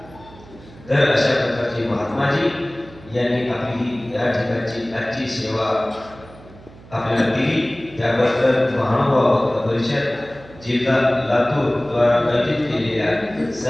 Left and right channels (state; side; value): noise; right; hum, 21 dB below the sound